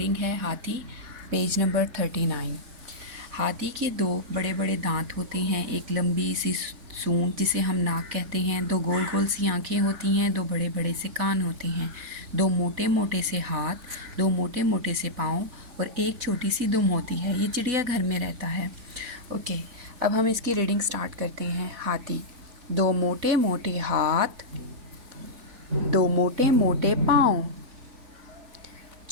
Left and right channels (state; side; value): late; left; 4.1 ms